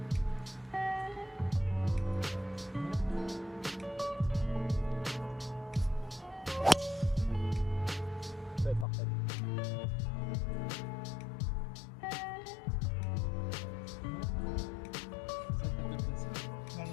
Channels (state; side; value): drops out; right; at 8.8 s